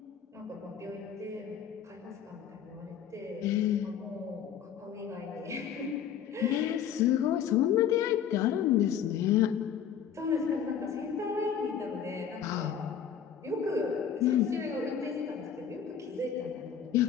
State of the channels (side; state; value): right; quieter; 8.4 dB